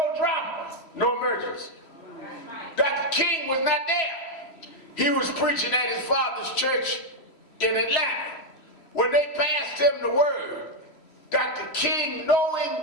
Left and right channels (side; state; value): right; late; 3.1 ms